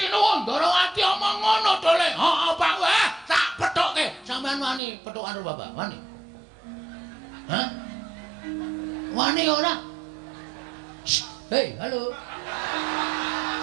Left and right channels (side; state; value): left; drops out; at 4.8 s